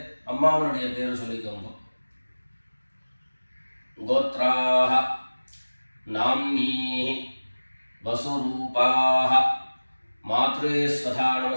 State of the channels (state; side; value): inverted; both; correlation -1.00